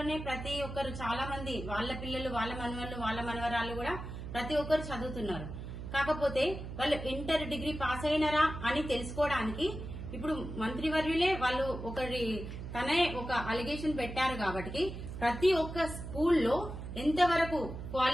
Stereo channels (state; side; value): noise; right; hum, 8 dB below the sound